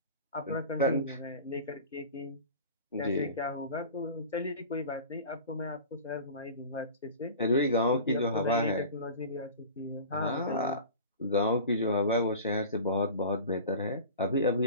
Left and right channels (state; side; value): inverted; both; correlation -0.37